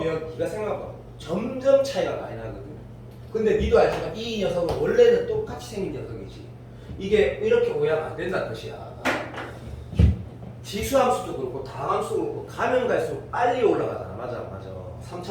네가 생각해봐. 점점 차이가 많이 나거든. 근데 니도 알지만 이 녀석은 원래는 똑같이 생긴 녀석이지. 이게 이렇게 오해하면 안 된다는 뜻이야. 지수함수도 그렇고 다함수도 그렇고 가면 갈수록 빨리 올라가잖아. 맞아.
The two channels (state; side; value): identical; both; correlation 1.00